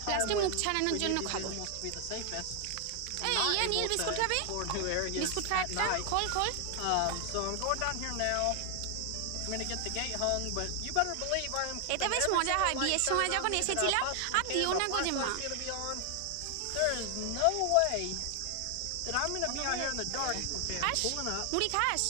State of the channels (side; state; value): both; different; correlation 0.00